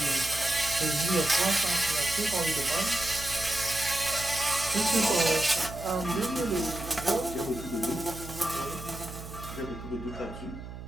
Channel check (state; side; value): noise; right; hum, 11 dB below the sound